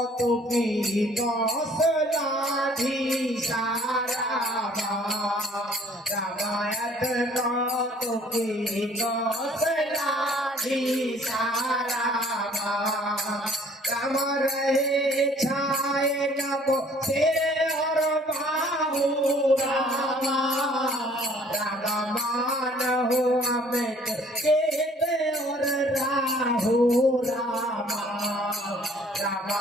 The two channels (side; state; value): both; normal; correlation 0.56